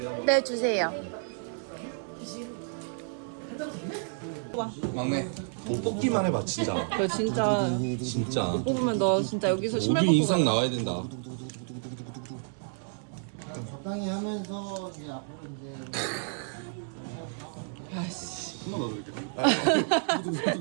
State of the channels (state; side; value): silent; left; 58 dB below the other